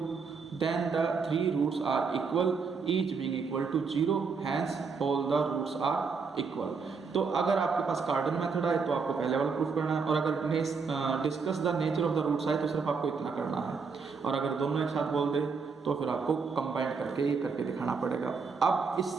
then the 3 roots are equal each being equal to 0 hence all the roots are equal. तो अगर आपके पास कार्डन method आए तो आपको पहले वाला proof करना है, और अगर discuss the nature of the roots आए तो सिर्फ आपको इतना करना है, और अगर दोनों एक साथ बोल दे तो फिर आपको कंबाइन करके ये करके दिखाना पड़ेगा। अब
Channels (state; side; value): quieter; left; 5.2 dB